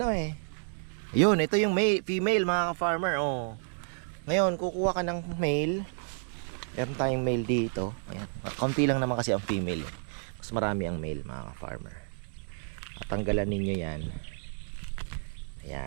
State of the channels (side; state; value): left; silent; 57 dB below the other